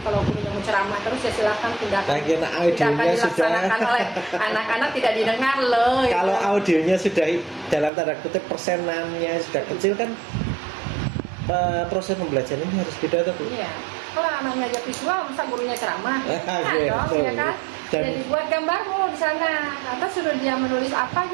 kalau gurunya mau ceramah terus ya silakan tindakan. Lagi Tidak akan audionya sudah dilaksanakan oleh anak-anak tidak didengar loh. gitu. kalau audionya sudah dalam tanda kutip persenannya sudah kecil kan proses pembelajaran ini harus beda tuh Bu. Iya. Kalau anaknya aja visual, masa gurunya ceramah? Nah, Iya, dong, betul. ya kan? Dan- Jadi buat gambarmu di sana. Atau suruh dia menulis apa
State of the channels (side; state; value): left; drops out; at 7.9 s